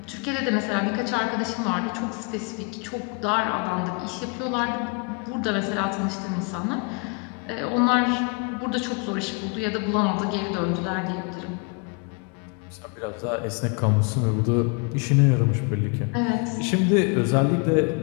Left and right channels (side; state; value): right; quieter; 32.7 dB